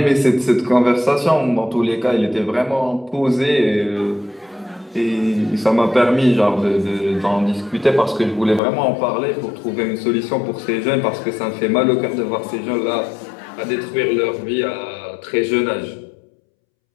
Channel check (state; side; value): drops out; right; at 8.6 s